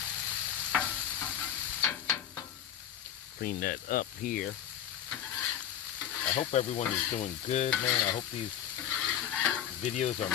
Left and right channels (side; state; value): right; quieter; 10.1 dB